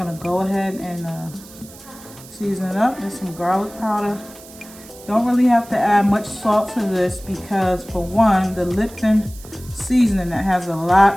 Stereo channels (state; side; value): noise; right; hiss, 20 dB below the sound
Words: go ahead and season it up. There's some garlic powder. Don't really have to add much salt to this because, for one, the Lipton seasoning that has a